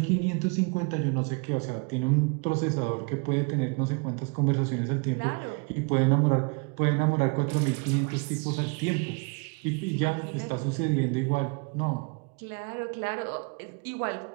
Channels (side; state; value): left; quieter; 32.8 dB